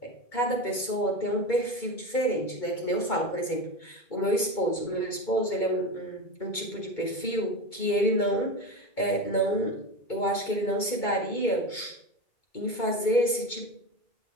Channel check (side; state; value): right; late; 2.2 ms